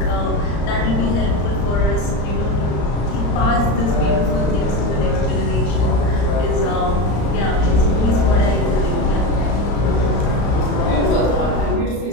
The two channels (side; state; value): right; late; 35 ms